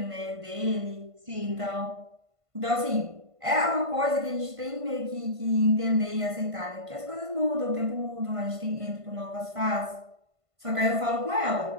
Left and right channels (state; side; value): late; left; 1.5 ms